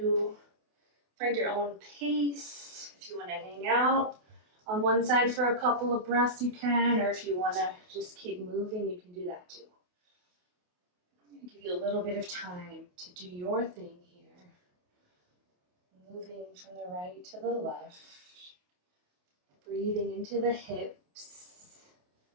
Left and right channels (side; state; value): left; late; 28 ms